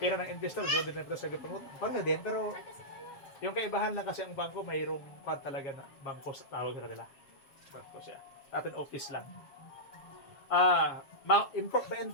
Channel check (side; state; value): right; late; 7.3 ms